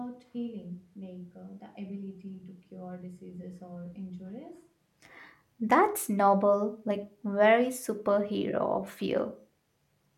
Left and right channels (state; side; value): identical; both; correlation 1.00